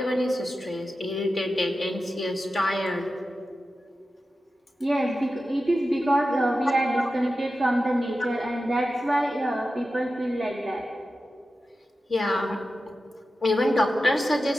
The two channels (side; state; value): both; normal; correlation 0.92